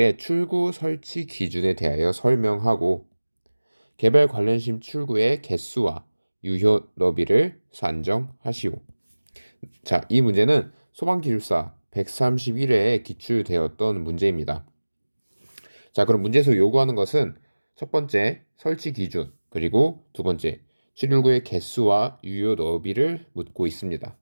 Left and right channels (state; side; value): inverted; both; correlation -1.00